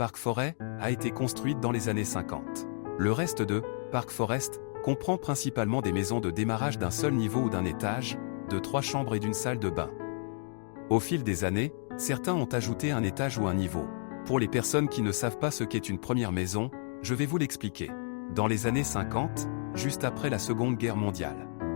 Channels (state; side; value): silent; right; digital silence